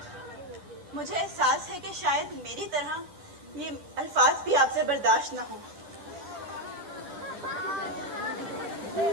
مجھے احساس ہے کہ شاید میری طرح یہ الفاظ بھی آپ سے برداشت نہ ہوں,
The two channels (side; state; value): left; late; 10 ms